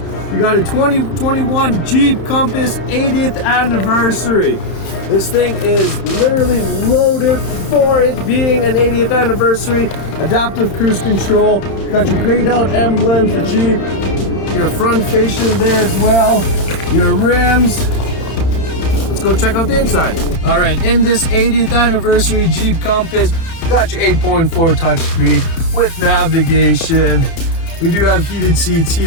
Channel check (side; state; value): right; late; 31 ms